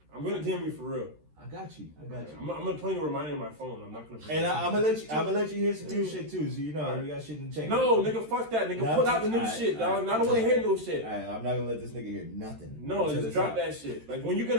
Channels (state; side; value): late; left; 13 ms